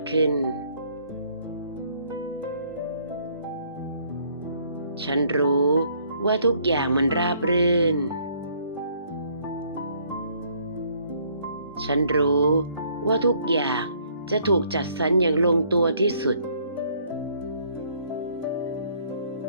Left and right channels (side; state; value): both; inverted; correlation -0.64